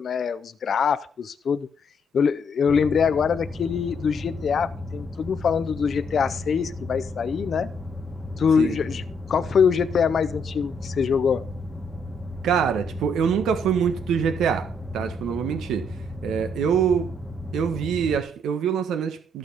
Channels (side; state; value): both; normal; correlation 0.71